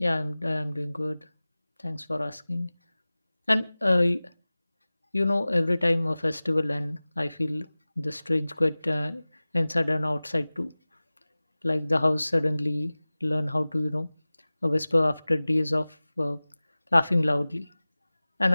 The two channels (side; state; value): both; inverted; correlation -0.98